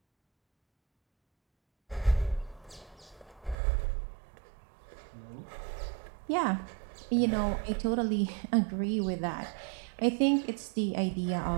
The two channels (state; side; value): drops out; left; at 3.6 s